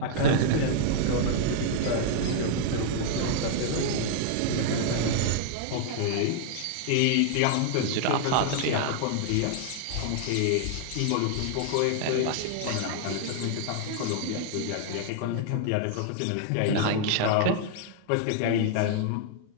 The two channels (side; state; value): both; different; correlation -0.01